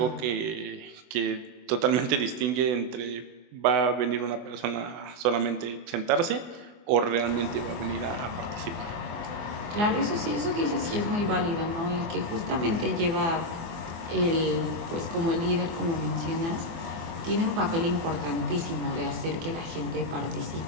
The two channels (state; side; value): late; left; 24 ms